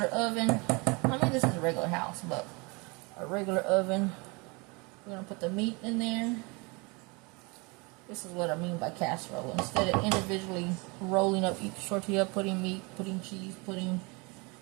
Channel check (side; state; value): left; quieter; 28.5 dB